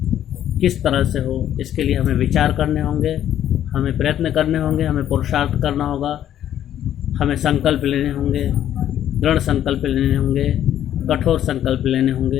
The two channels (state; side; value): quieter; right; 11.1 dB